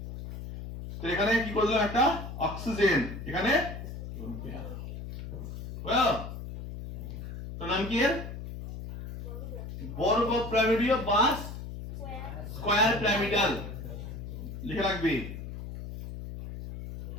তো এখানে কি করে দিলাম? একটা অক্সিজেন, এখানে তো নাম কি এর? বর্গ পিরামিডীয় বা স্কয়ার পিরামিডাল লিখে রাখবি।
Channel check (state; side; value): noise; left; hum, 9 dB below the sound